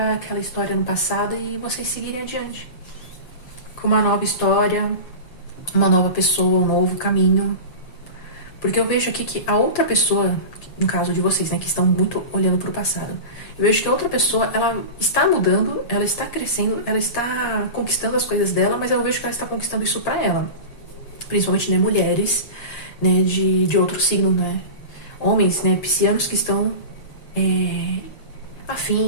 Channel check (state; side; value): late; right; 7.5 ms